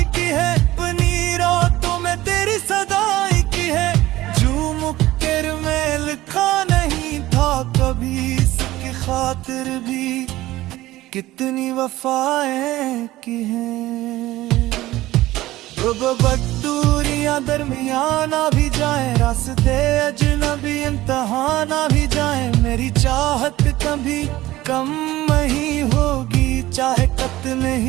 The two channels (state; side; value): quieter; left; 16.6 dB